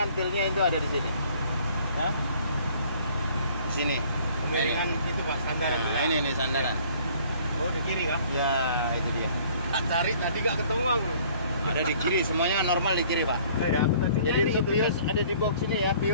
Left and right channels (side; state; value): both; inverted; correlation -0.56